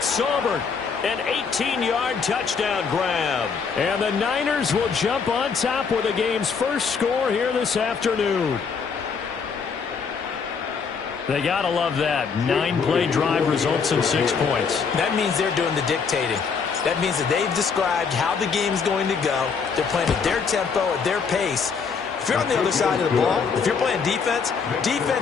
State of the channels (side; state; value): right; quieter; 5.7 dB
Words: Saubert. An 18-yard touchdown grab. And the Niners will jump on top with the game's first score here this afternoon. They got to love that. 9-play drive results in 6 points. That means they're doing the dictating. That means that they've described how the game's going to go. They're playing at their tempo, at their pace. If you're on the other side of the ball, if you're playing defense,